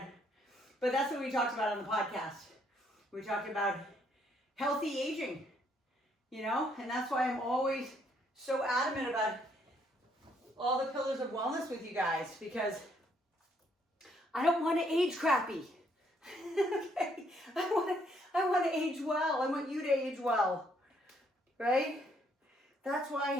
But that's what we talked about on the podcast. We talked about healthy aging, and that's why I'm always so adamant about all the pillars of wellness with you guys, because I don't want to age crappy. Okay? I want to age well. I want you to age well, right? That's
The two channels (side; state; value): both; normal; correlation 0.69